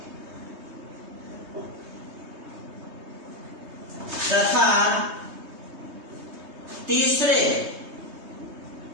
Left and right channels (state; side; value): late; left; 3.2 ms